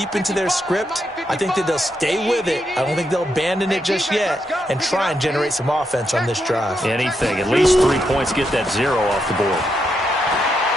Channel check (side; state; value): both; normal; correlation 0.81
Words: into their script. I think that they'll stay with it. I don't think they'll abandon it just yet and try and generate some offense on this drive. Anything. At least 3 points, get that 0 off the board.